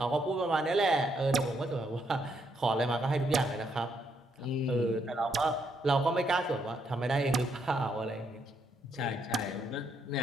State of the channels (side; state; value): both; normal; correlation 0.75